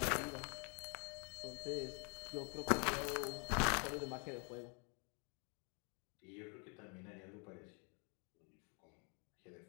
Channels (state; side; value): quieter; right; 35.8 dB